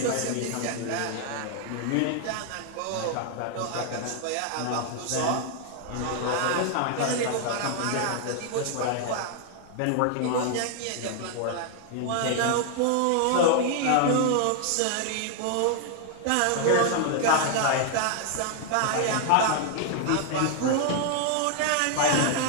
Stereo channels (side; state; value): both; different; correlation 0.00